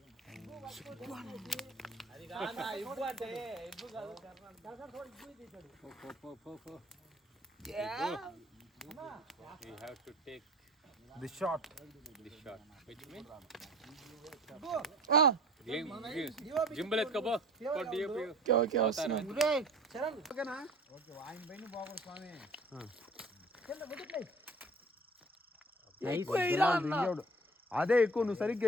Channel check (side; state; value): both; normal; correlation 0.44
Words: We have to take this shot. Which means? Gimbal etkabo. Okay వస్తున్నా. అదే ఎక్కువ నువ్వు సరిగ్గా